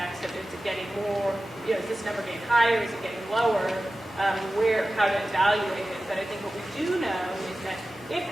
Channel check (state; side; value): normal; both; correlation 0.95